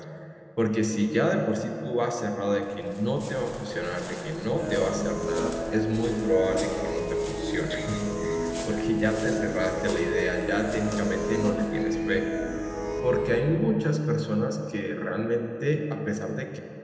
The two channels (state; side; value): identical; both; correlation 1.00